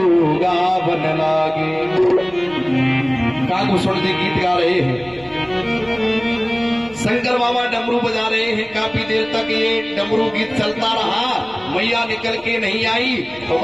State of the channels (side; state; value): right; noise; rumble, 26 dB below the sound